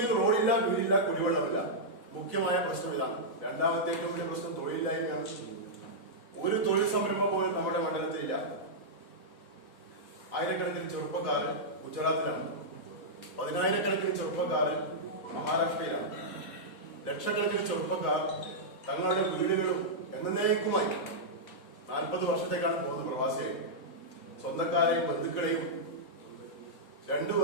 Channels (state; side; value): late; right; 4.0 ms